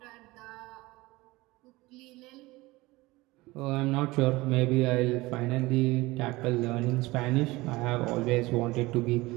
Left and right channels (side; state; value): left; quieter; 20.9 dB